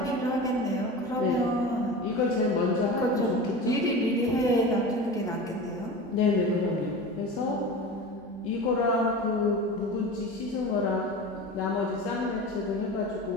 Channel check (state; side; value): normal; both; correlation 0.32